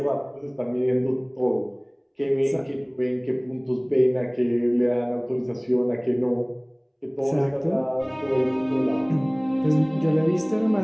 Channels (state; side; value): identical; both; correlation 1.00